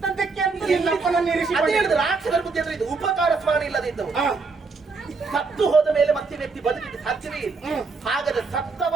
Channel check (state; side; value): quieter; left; 4.4 dB